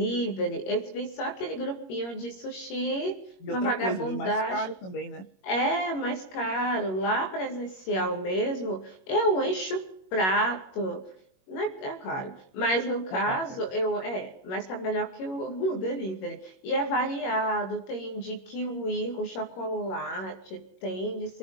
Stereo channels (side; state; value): right; late; 21 ms